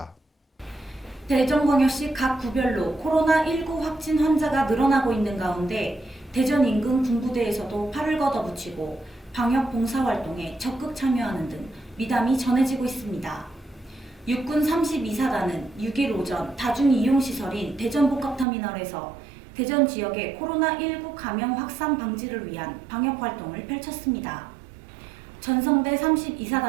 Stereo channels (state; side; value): drops out; left; at 18.4 s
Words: 대전광역시 각 구별로 코로나19 확진 환자가 늘어나고 있는 가운데 대전 인근 군부대에서도 팔을 걷어붙이고 방역 봉사활동에 적극 참여하는 등 미담이 전해지고 있습니다. 육군 32사단은 6일 오전 다중이용시설인 대전복합터미널에서 대전 지역의 코로나19 감염 확산 방지를 위한 방역활동을 펼쳤습니다. 전성대